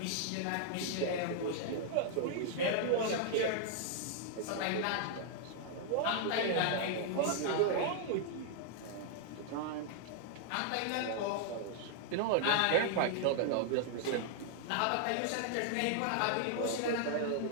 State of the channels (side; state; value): both; different; correlation -0.01